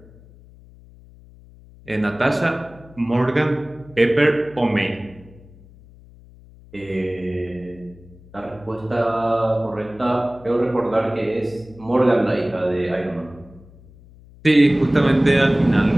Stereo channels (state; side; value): noise; left; hum, 23 dB below the sound